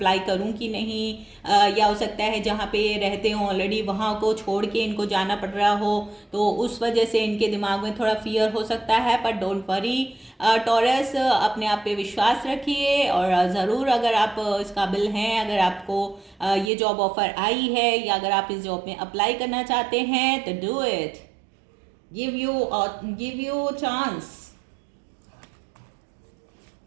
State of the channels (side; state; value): left; drops out; at 16.7 s